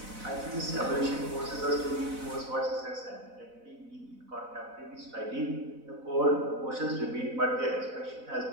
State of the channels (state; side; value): late; left; 4.0 ms